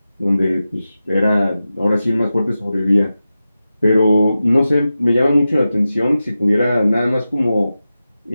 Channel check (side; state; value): both; inverted; correlation -0.93